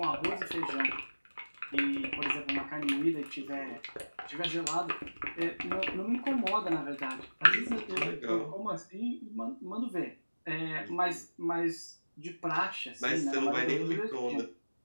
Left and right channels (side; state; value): both; inverted; correlation -1.00